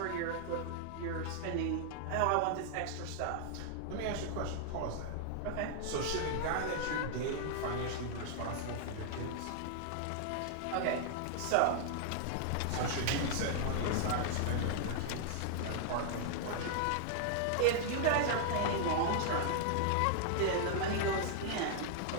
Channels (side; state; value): both; different; correlation -0.01